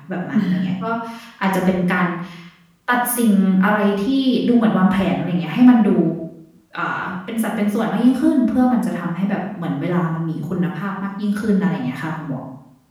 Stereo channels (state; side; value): identical; both; correlation 1.00